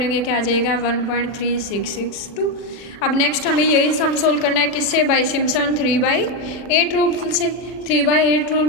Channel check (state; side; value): late; right; 40 ms